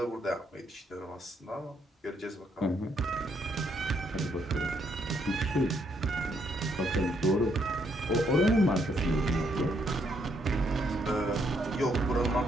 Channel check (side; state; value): both; normal; correlation 0.73